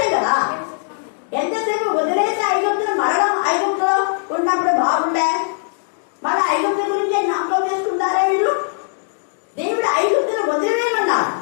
కదా. ఎంతసేపు వదిలేసి ఐగుప్తుని మరణం ఐగుప్తులో ఉన్నప్పుడు బాగుండే, మన ఐగుప్తు గురించి జ్ఞాపకం చేసుకుంటారా వీళ్ళు? దేవుడు ఐగుప్తుని వదిలేయమన్నారు.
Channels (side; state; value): right; silent; digital silence